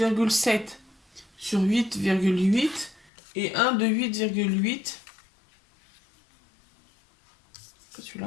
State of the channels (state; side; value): drops out; right; at 3.1 s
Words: sur 8,8 et un de 8,8. C'est